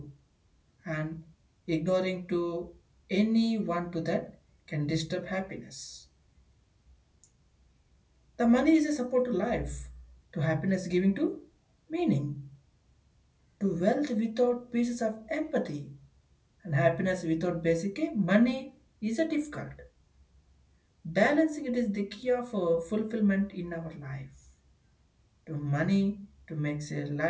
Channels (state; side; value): identical; both; correlation 1.00